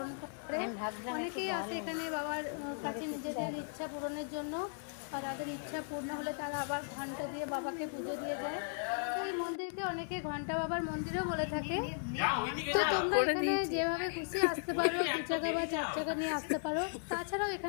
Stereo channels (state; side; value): silent; right; digital silence